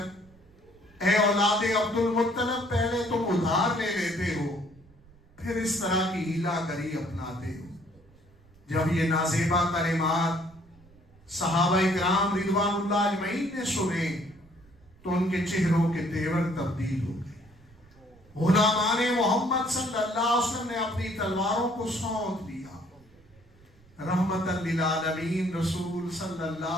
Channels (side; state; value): right; noise; rumble, 27 dB below the sound